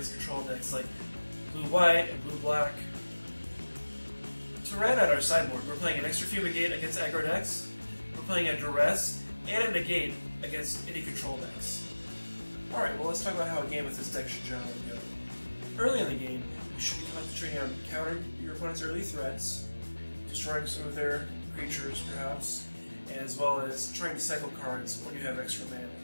control decks like blue-white and blue-black. To round out our sideboard, we're playing an extra Fumigate against aggro decks, we're playing a Duress, and a Negate against any control decks. Alright, well let's talk about how a game with this deck should generally go. Early in the game, you should be concentrating on countering your opponent's early threats, destroying some of their creatures perhaps, as well as trying to cycle cards when you have extra mana.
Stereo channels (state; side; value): inverted; both; correlation -1.00